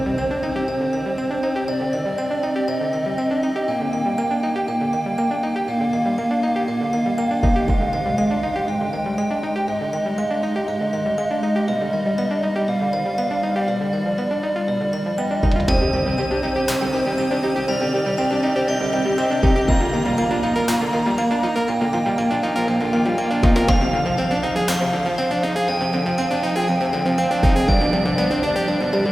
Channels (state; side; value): normal; both; correlation 0.95